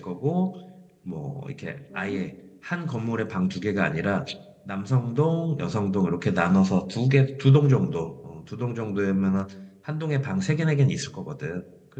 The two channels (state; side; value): identical; both; correlation 1.00